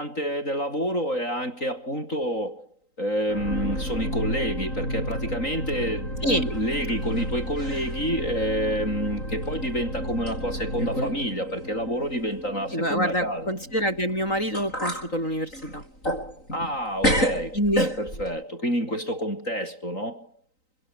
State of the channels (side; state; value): right; late; 3.9 ms